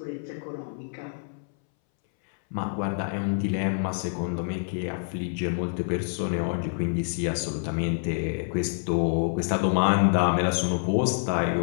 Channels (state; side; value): silent; right; 60 dB below the other